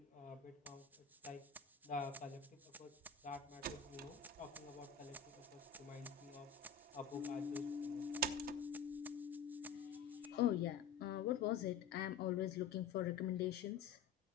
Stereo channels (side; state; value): right; quieter; 6.2 dB